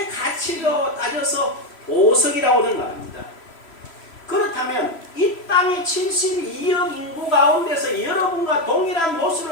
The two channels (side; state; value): right; late; 3.0 ms